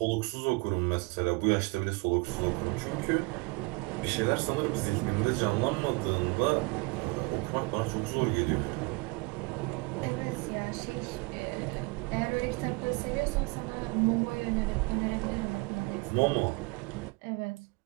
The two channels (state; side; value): quieter; left; 27.1 dB